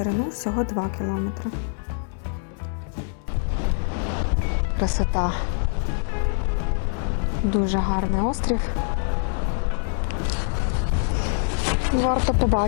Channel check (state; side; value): silent; right; 62 dB below the other